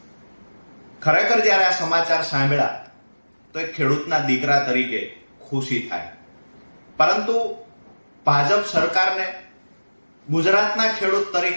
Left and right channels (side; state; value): both; inverted; correlation -1.00